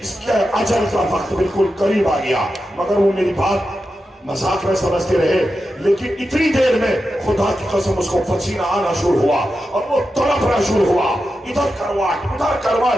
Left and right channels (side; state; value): both; normal; correlation 0.90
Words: اس کے اجل کا وقت بالکل قریب آ گیا۔ مگر وہ میری بات مذاق میں سمجھتے رہے، لیکن اتنی دیر میں خدا کی قسم اس کو پسینہ آنا شروع ہوا اور وہ تڑپنا شروع ہوا، ادھر کرواٹ ادھر